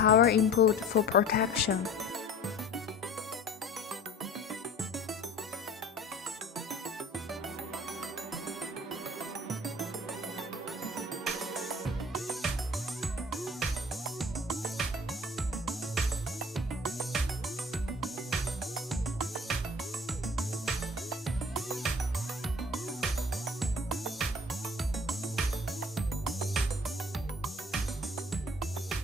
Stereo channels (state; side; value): normal; both; correlation 0.46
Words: input for protection.